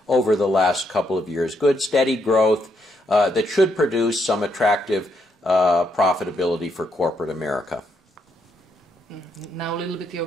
over the last couple of years. Good, steady growth that should produce some attractive profitability for corporate America. Now a little bit your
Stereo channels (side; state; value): both; normal; correlation 0.76